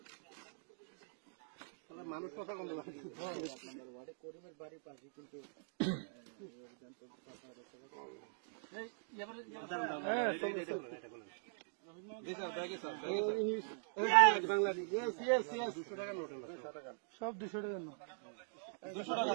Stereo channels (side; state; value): left; silent; digital silence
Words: মানুষ কথা বলতে করিমের বাড়ির পাশে কিন্তু সব 200 টাকার নোট, 200 টাকা, সব 200 টাকার নোট,